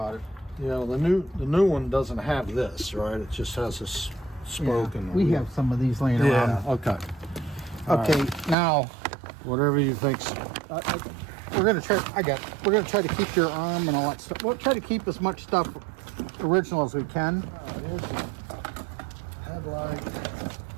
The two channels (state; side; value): drops out; left; at 8.6 s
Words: it. Yeah, the new one doesn't have this, right? It just has this spoke and we have some of these laying Yeah. around. Okay. Okay, now Whatever you think's. we're gonna try. We're gonna try to keep your arm and all that stuff. We'll try to keep as much stuff original as we can. Here's the headlight.